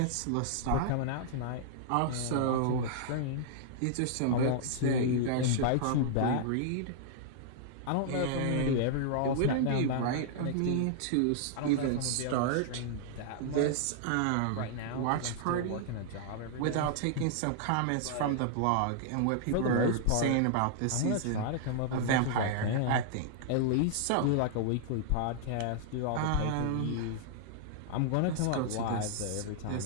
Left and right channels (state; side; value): different; both; correlation -0.01